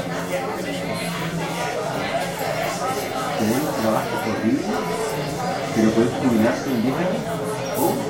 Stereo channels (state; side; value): identical; both; correlation 1.00